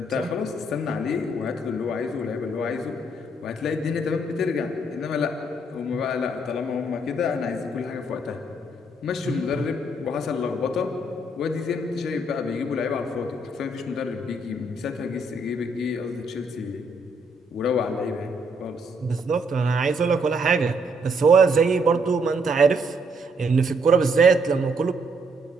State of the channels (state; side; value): normal; both; correlation 0.71